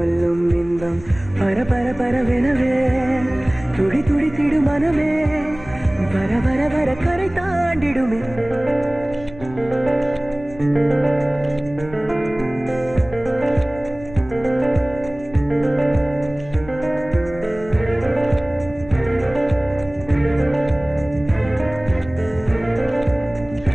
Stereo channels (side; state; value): left; noise; rumble, 18 dB below the sound